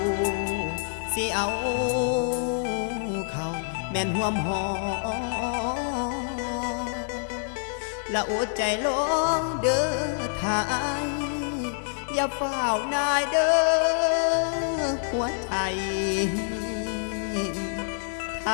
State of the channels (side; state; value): right; silent; 60 dB below the other